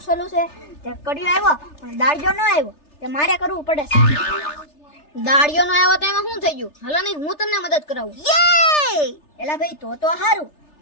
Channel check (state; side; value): late; right; 3.3 ms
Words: સોલું છે તે કડિયો આવ્યો પણ દાળજો ન આવ્યો તે મારે કરવું પડે છે. દાળિયો નો આવ્યો તો એમાં શું થઈ ગયું? હાલો નહીં હું તમને મદદ કરાવું. એલા ભાઈ તો હારું,